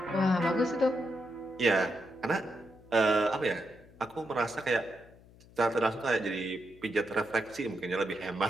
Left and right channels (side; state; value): left; noise; hum, 24 dB below the sound